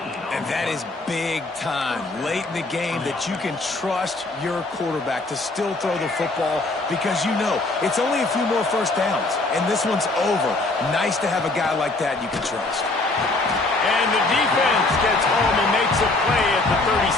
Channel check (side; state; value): right; quieter; 3.1 dB